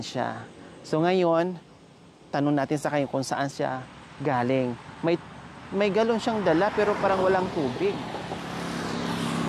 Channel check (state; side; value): identical; both; correlation 1.00